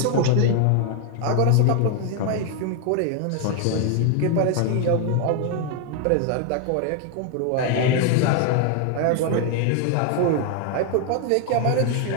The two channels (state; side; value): different; both; correlation 0.00